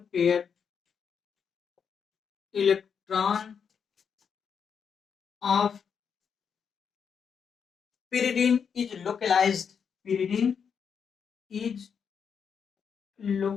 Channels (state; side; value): quieter; right; 6.8 dB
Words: electron of pyridine is localized